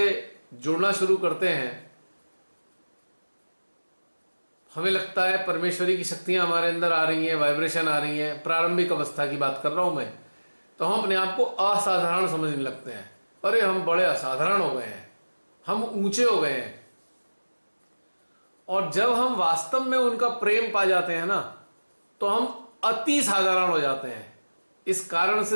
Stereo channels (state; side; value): inverted; both; correlation -1.00